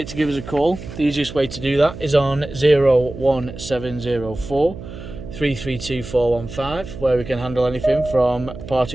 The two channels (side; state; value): right; noise; hum, 12 dB below the sound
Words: to give us a call. The easiest way to do that is on 01704 332 415, where we can handle anything from part